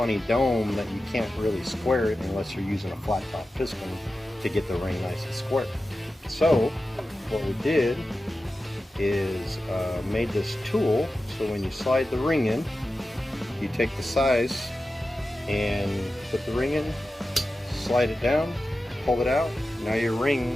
dome that you can't really square it unless you're using a flat top piston to get the ring nice and square. So what we did is made this tool so when you slide the ring in, you take the size and put the ring in, slide it down, pull it out. Now your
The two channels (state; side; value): normal; both; correlation 0.93